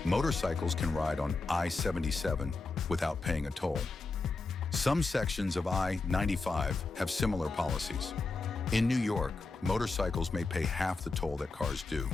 motorcycles can ride on I-77 without paying a toll. Some sections of I-95 have similar policies. In New York, motorcycles may pay half the toll that cars do.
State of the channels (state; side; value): quieter; right; 3.7 dB